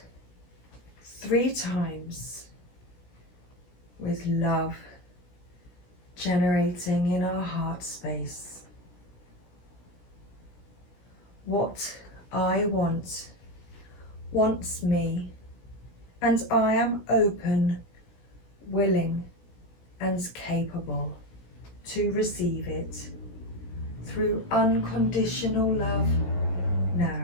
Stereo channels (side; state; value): right; late; 16 ms